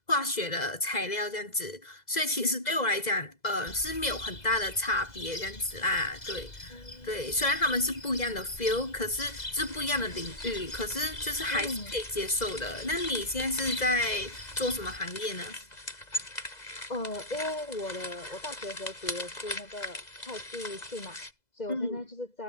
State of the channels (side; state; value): right; late; 2.0 ms